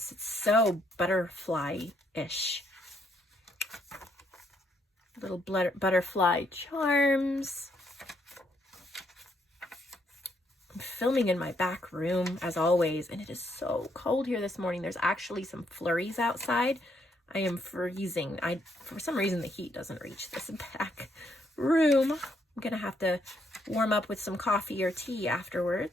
It's so butterfly-ish. Little butterfly charms. I'm filming in my back room as always, and it is so cold here this morning. There's actually some flurries outside. I am freezing. For some reason, the heat doesn't reach this back room. I'm gonna have to warm up with some coffee or tea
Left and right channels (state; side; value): normal; both; correlation 0.73